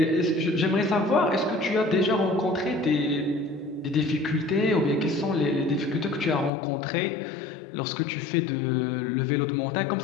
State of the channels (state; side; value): drops out; right; at 6.5 s